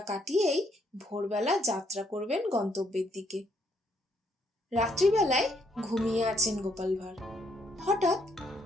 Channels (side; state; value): both; normal; correlation 0.71